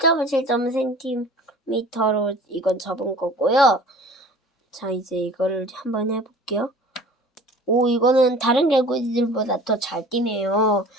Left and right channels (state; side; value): normal; both; correlation 0.44